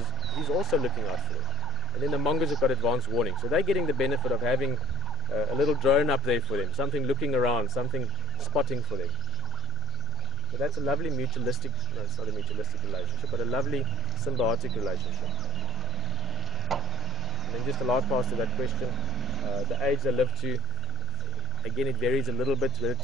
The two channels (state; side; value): quieter; right; 5.5 dB